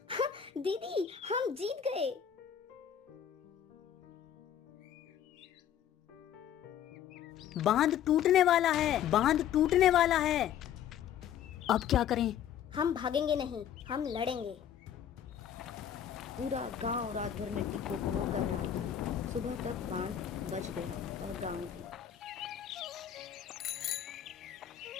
दीदी, हम जीत गए। बांध टूटने वाला है, बांध टूटने वाला है। अब क्या करें? हम भागेंगे नहीं, हम लड़ेंगे। पूरा गांव रात भर मिट्टी को भोर कर रहा था। सुबह तक बांध बच गया और गांव भी।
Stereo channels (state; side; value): quieter; right; 9.6 dB